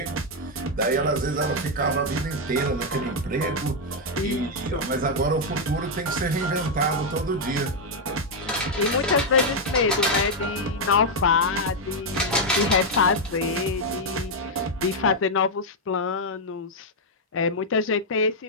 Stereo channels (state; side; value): normal; both; correlation 0.00